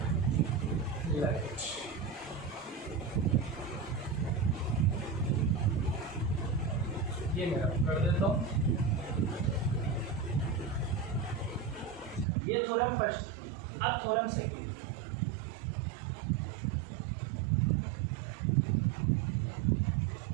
Right. ये मेरा कर देता हूँ। ये थ्योरम फर्स्ट, अब थ्योरम सेकंड।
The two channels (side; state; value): left; drops out; at 12.2 s